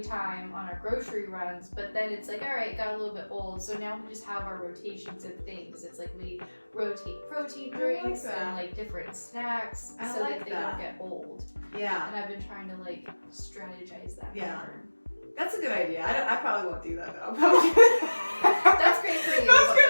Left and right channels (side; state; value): both; inverted; correlation -1.00